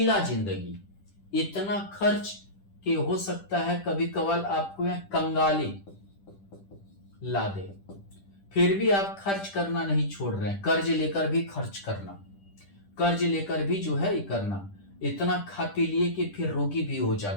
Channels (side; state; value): right; late; 10 ms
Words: जिंदगी, इतना खर्च कि हो सकता है कभी कभार आपको यह कंगाली ला दे, फिर भी आप खर्च करना नहीं छोड़ रहे हैं, कर्ज लेकर भी खर्च करना, कर्ज लेकर भी जो है ये करना, इतना खा पी लिए कि फिर रोगी भी हो